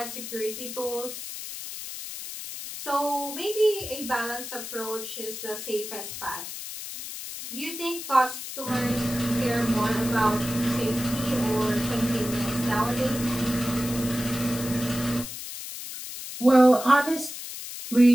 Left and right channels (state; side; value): noise; left; hiss, 9 dB below the sound